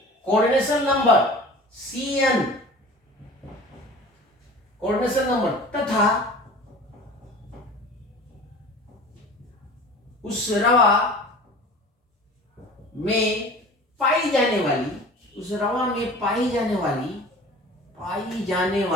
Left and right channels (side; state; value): both; normal; correlation 0.41